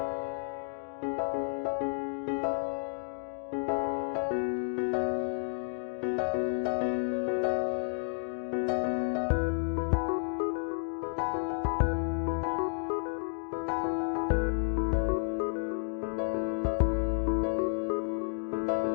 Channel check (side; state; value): right; silent; digital silence